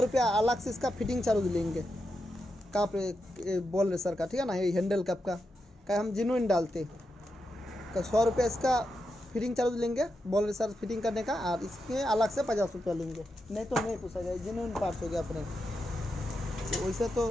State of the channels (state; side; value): normal; both; correlation 0.86